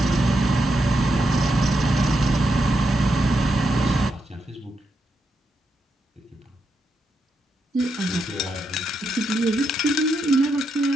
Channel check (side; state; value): both; normal; correlation 0.83